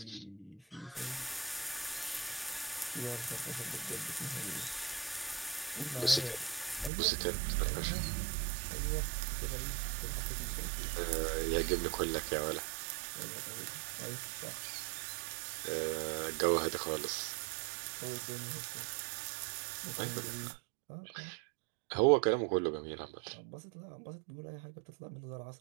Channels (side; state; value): left; drops out; at 6.9 s